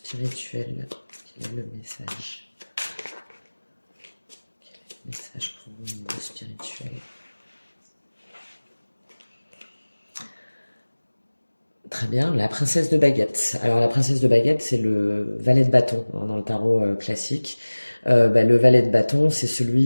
quel est le message? Quel est le message pour vous au niveau spirituel? Très bien, la princesse de baguette. Alors la princesse de baguette, c'est le valet de bâton hein, dans le tarot classique. Bah, le valet de bâton, c'est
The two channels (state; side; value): inverted; both; correlation -1.00